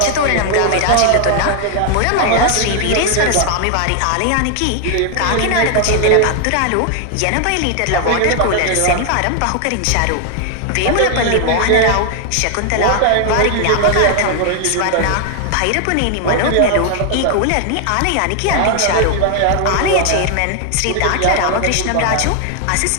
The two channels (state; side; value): different; both; correlation 0.00